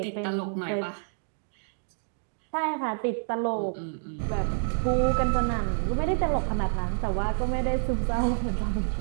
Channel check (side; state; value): left; silent; 59 dB below the other